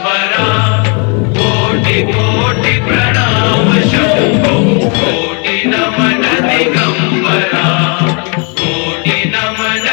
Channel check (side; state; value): right; quieter; 35.9 dB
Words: कोटि कोटि प्रणाम शंभो कोटि नमन दिगंबरा कोटि नमन